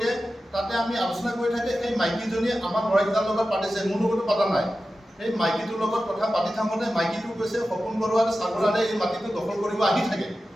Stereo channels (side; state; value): both; normal; correlation 0.93